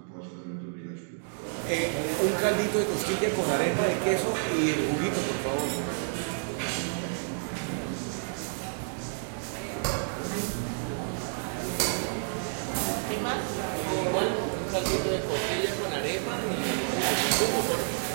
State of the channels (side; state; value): left; silent; digital silence